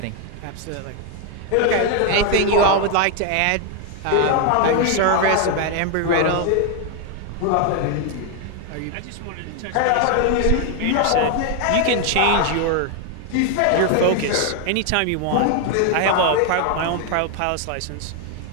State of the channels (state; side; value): different; both; correlation 0.01